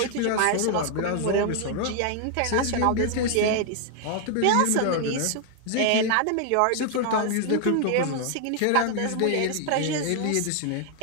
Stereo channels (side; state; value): both; different; correlation 0.00